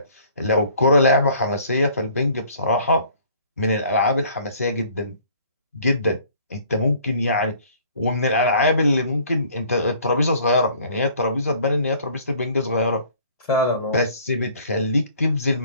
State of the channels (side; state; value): both; inverted; correlation -0.55